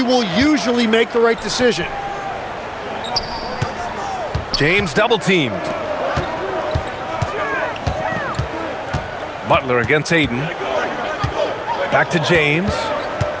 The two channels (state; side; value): identical; both; correlation 1.00